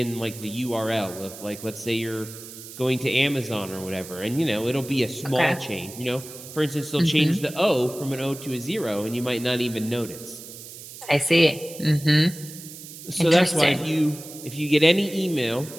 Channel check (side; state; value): right; noise; hiss, 14 dB below the sound